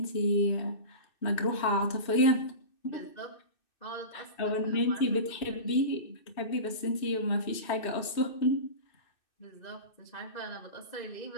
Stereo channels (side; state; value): right; late; 2.6 ms